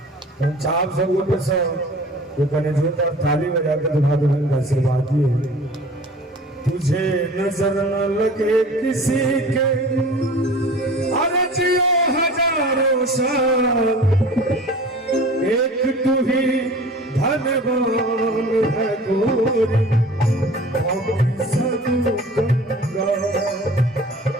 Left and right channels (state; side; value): normal; both; correlation 0.43